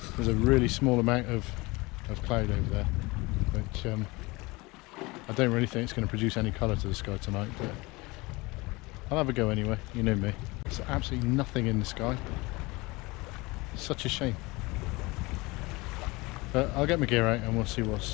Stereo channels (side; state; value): right; quieter; 23.6 dB